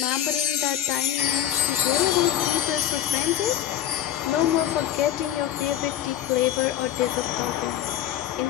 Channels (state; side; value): quieter; right; 11.3 dB